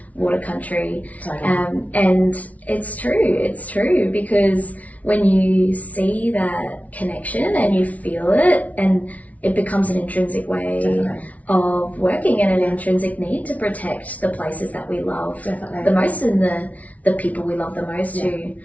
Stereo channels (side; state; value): right; late; 0.069 ms